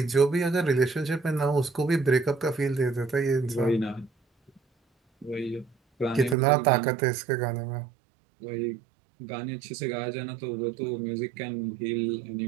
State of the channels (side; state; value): left; drops out; at 6.4 s